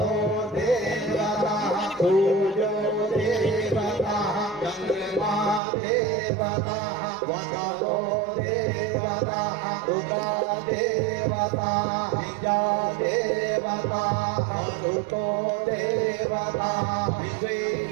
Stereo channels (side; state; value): left; drops out; at 5.6 s